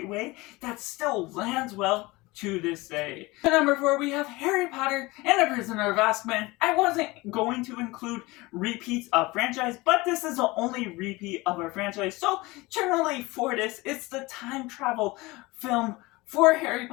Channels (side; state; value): right; quieter; 22.2 dB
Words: way that still lands well to this day. At number 4, we have Harry Potter and the Prisoner of Azkaban. I wasn't going to include repeats of franchise, but this is the only repeat of our franchise, so generally for this, it's the time travel film for Harry